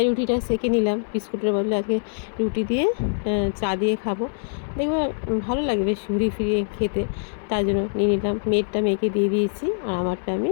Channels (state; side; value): silent; right; 60 dB below the other